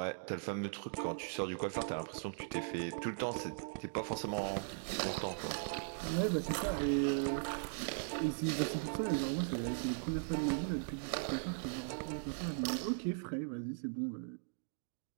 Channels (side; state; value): left; silent; digital silence